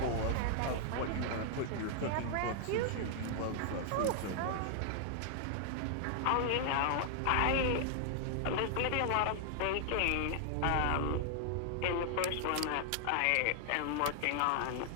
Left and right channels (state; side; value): different; both; correlation 0.00